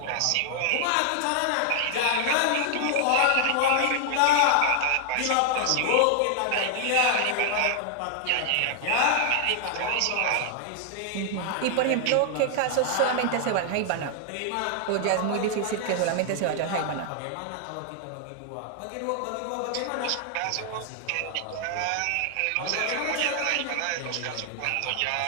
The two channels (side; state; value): both; different; correlation 0.00